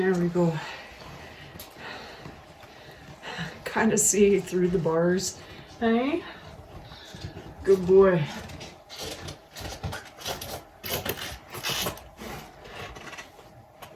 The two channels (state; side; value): identical; both; correlation 1.00